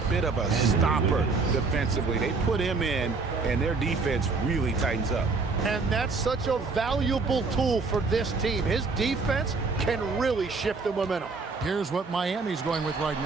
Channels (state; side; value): quieter; left; 4.2 dB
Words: bit of a stopper defensively. They put him in, and their defense really tightens up. And that's such a valuable tool for this team. His defense can really shift the momentum. Here's what Miami's going with right